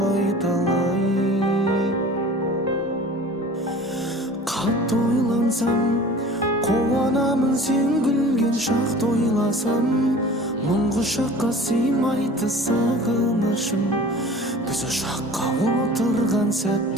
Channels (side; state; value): both; normal; correlation 0.43